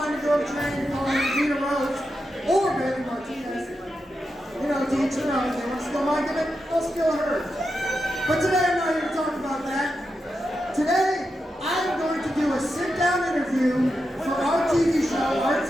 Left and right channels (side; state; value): both; normal; correlation 0.88